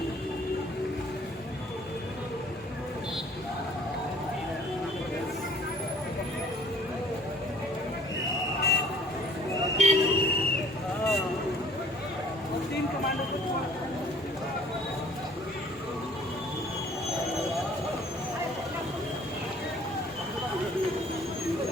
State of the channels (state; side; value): normal; both; correlation 0.54